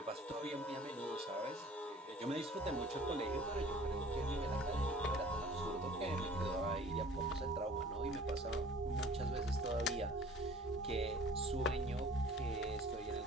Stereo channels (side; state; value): both; normal; correlation 0.49